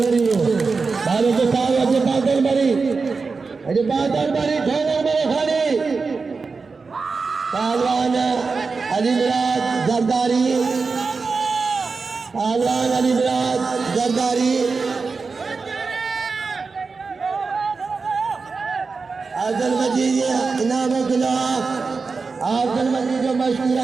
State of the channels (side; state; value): left; quieter; 4.5 dB